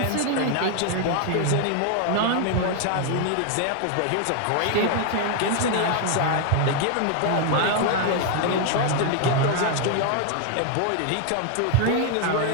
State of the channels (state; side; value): different; both; correlation 0.00